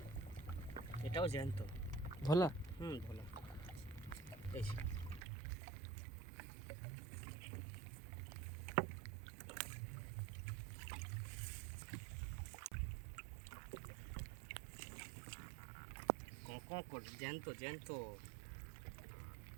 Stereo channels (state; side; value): drops out; left; at 5.2 s